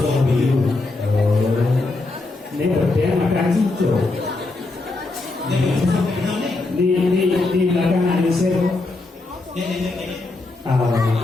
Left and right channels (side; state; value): right; quieter; 3.3 dB